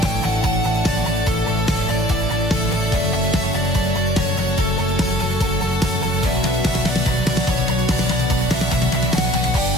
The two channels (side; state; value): both; normal; correlation 0.50